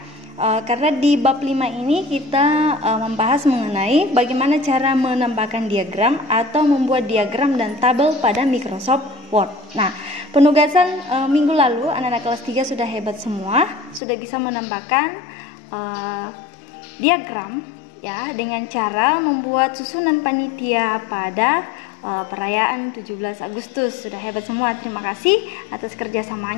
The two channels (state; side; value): drops out; right; at 14.0 s